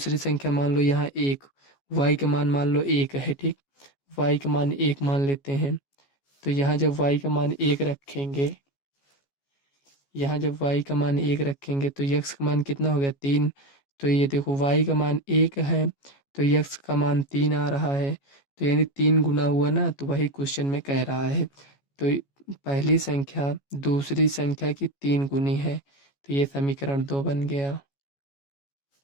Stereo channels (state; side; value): late; right; 14 ms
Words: संख्या मान लो यहाँ 1, y का मान मान लो 1 है, ठीक। y का मान 1 मान लेते हैं। तो यहाँ जब y का मान 1 रखेंगे, यहाँ जब y का मान 1 रखेंगे तो x का मान कितना हो गया, 3। तो ये देखो y का मान 1 है तो x का मान 3 आ रहा है। तो यानी 3 गुना हुआ ना, तो वही क्वेश्चन में कह रहा है। तो पहली संख्या दूसरी संख्या की 3 गुनी है, तो ये समीकरण 2 बन गया।